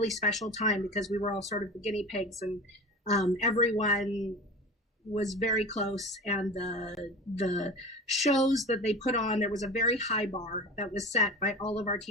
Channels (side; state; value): both; normal; correlation 0.34